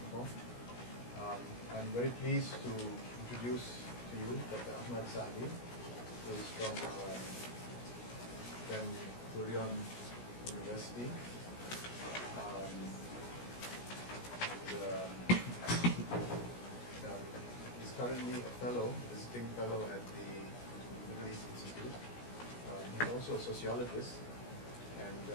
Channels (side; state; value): right; late; 17 ms